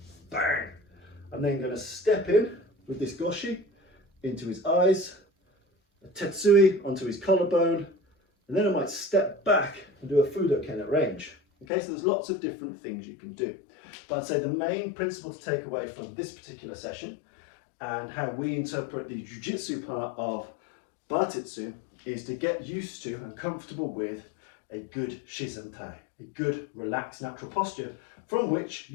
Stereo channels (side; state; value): right; drops out; at 11.7 s